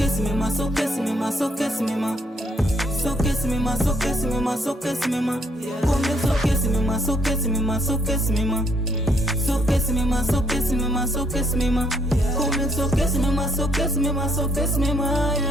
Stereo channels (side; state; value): both; normal; correlation 0.69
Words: se mima, só que se mima, só que se mima. Só que se mima, só que se mima, só que se mima. Comigo só que se mima, só que se mima, só que se mima. Só que se mima, só que se mima, só que se mima. Comigo só que se mima, só que se mima, só que se mima,